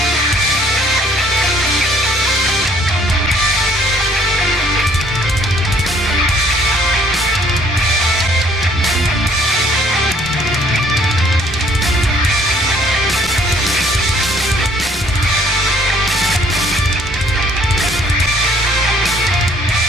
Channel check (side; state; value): both; normal; correlation 0.61